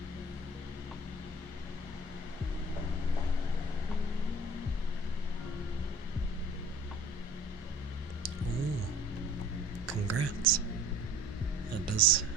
Oh, congrats. That does,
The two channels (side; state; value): both; normal; correlation 0.48